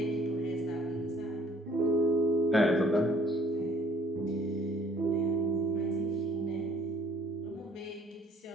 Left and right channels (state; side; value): normal; both; correlation 0.58